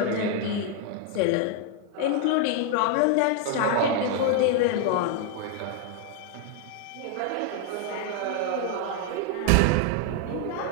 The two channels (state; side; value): different; both; correlation 0.01